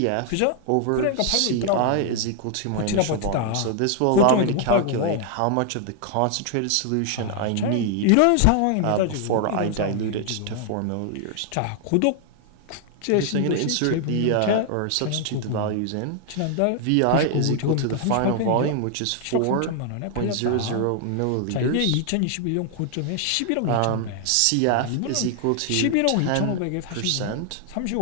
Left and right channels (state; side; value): different; both; correlation 0.00